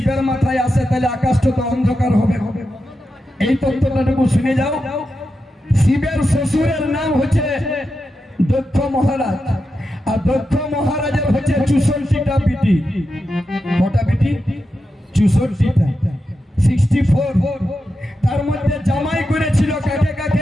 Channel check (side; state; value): both; normal; correlation 0.89